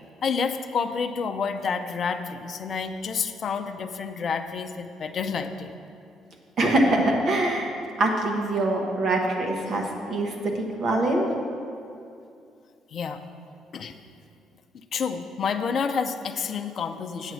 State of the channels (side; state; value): both; normal; correlation 0.71